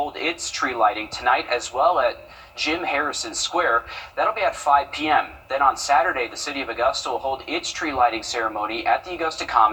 its tree lighting tonight as well at Jim Harrison Square. That'll be at 5 p.m. Then on Saturday, the city of Augusta will hold its tree lighting ceremony at the Augusta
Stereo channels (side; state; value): both; identical; correlation 1.00